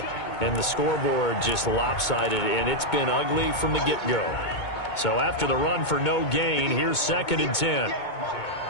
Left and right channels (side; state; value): right; late; 2.2 ms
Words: And the scoreboard just lopsided, and it's been ugly from the get-go. So after the run for no gain, here's 2nd and 10.